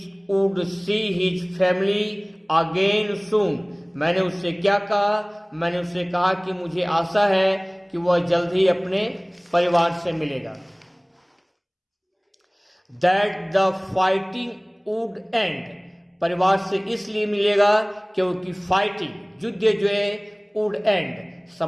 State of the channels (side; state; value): both; identical; correlation 1.00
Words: would see his family again सून, मैंने उससे क्या कहा? मैंने उससे कहा कि मुझे आशा है कि वह जल्द ही अपने परिवार से मिलेगा। That the fighting would and, परिवार से इसलिए मिलेगा क्योंकि फाइटिंग युद्ध जो है वुड एंड